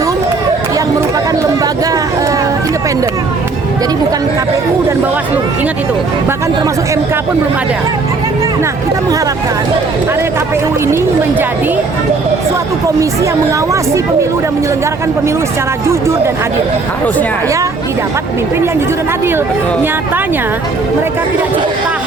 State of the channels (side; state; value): left; quieter; 3.9 dB